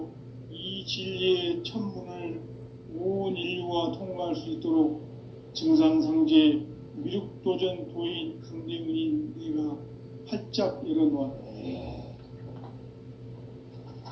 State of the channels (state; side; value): identical; both; correlation 1.00